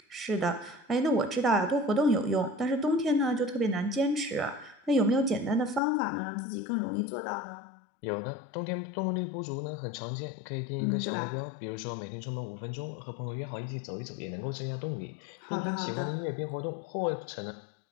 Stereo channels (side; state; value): right; drops out; at 5.8 s